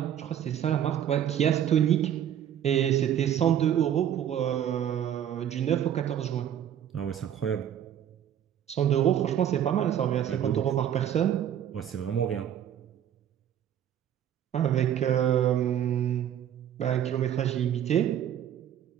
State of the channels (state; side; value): quieter; left; 10.1 dB